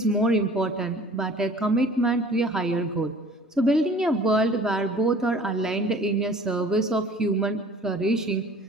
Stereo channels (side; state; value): both; normal; correlation 0.49